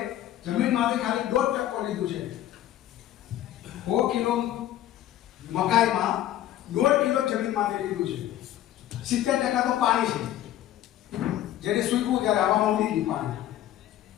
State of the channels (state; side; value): quieter; right; 12.7 dB